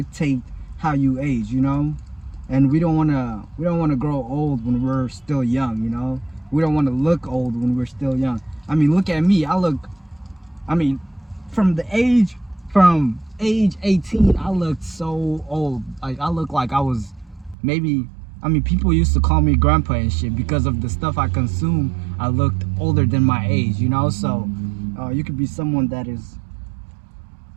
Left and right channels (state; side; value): drops out; left; at 17.6 s